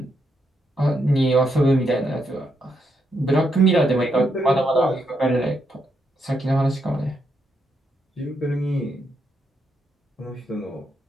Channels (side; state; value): both; normal; correlation 0.80